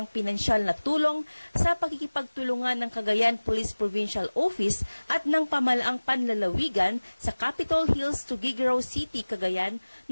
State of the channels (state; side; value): inverted; both; correlation -1.00